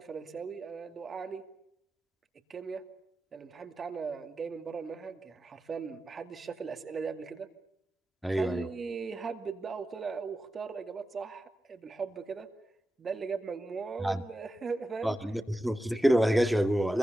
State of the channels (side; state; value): both; normal; correlation 0.92